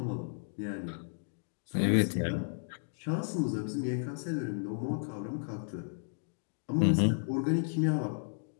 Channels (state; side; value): silent; right; digital silence